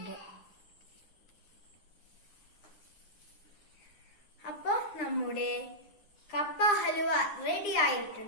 അപ്പൊ നമ്മുടെ കപ്പ ഹലുവ റെഡി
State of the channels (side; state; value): right; late; 9.9 ms